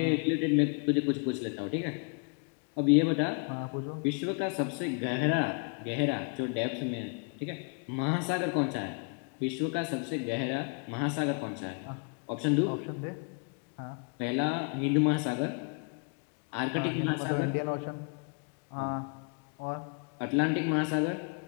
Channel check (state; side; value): quieter; right; 36.8 dB